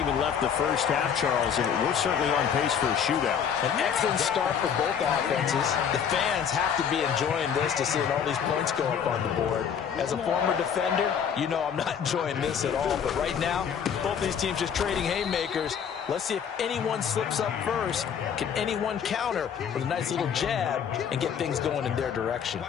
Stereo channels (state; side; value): quieter; right; 7.7 dB